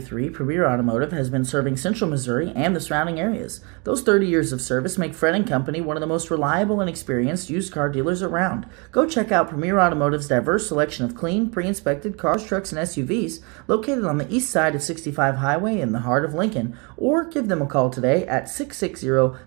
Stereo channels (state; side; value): quieter; left; 32.0 dB